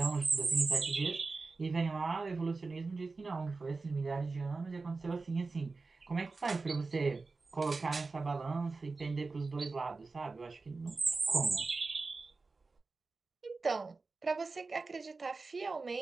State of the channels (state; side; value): quieter; left; 3.9 dB